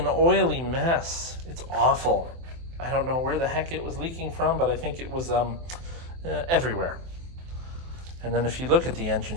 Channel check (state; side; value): late; left; 23 ms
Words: oily mess. It's awful. I don't know where the heck it was leaking from, but I think it was everywhere. And then if you look at the engine